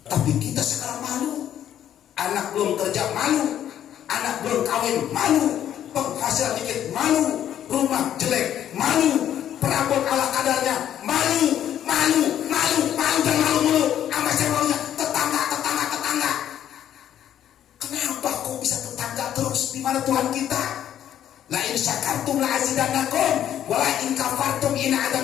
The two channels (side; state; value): right; quieter; 10.7 dB